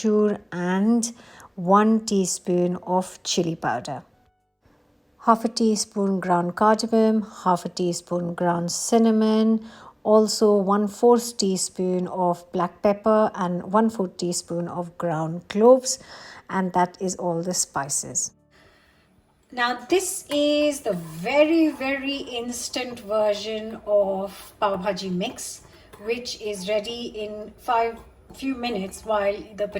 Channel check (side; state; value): both; identical; correlation 1.00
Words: and 1 teaspoon of chili powder. Half a teaspoon ground cardamom, half a teaspoon ground cinnamon, also 1/4 teaspoon of black pepper and 1/4 teaspoon of ground cloves, and that is all the spices. Now this is the very, very instant version of pav bhaji mix, which is ready in few minutes while the